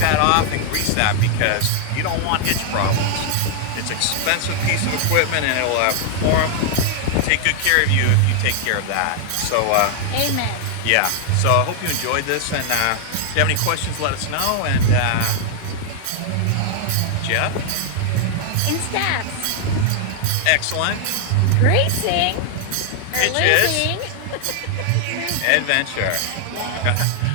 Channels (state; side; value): different; both; correlation 0.00